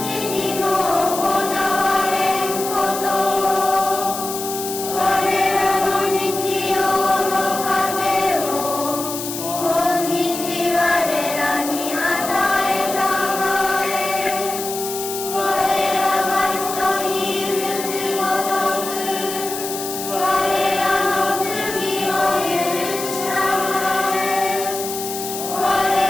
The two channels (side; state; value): left; noise; hiss, 7 dB below the sound